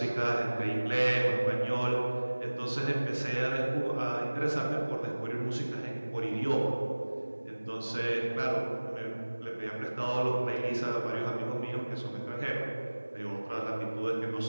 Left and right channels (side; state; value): both; inverted; correlation -1.00